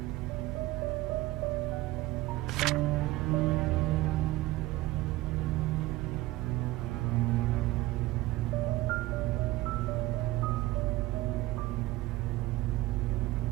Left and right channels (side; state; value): left; quieter; 18.3 dB